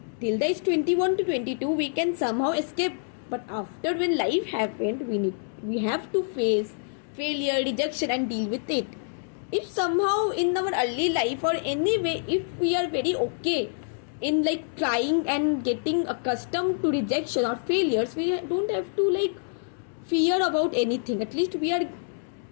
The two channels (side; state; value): right; silent; digital silence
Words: Till the age 21 to 22 we can somehow escape, but after when life happened, we have to face failure, rejection and deal with it. If somehow in our early life or anyway, if we are very okay in like trying and getting accustomed to rejection or failures, we don't have to like fear about anything. At least we are